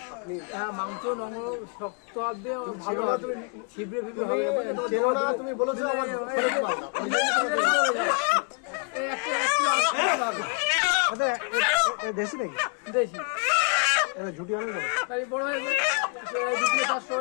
আপনি। হ্যাঁ মাংস নরম শক্ত হবে, ভালো ছিবড়ে ফিবড়ে হবে। তুমি বলেছো আমার দেশি নাকি? দেশি ঝুটি অনেক বড় হয়ে যাবে, 2 কিলো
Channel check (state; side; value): quieter; right; 38.7 dB